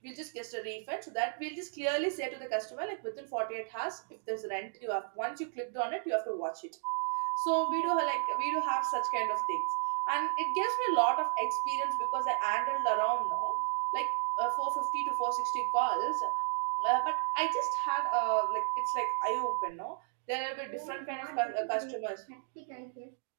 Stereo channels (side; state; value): left; silent; digital silence